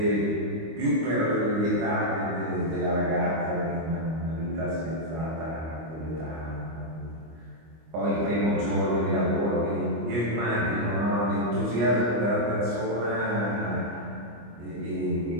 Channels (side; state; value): left; late; 25 ms